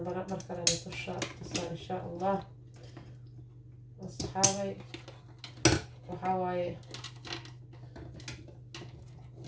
mar kale idin tusaa insha allah asxaabay waxaa waaye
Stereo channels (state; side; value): identical; both; correlation 1.00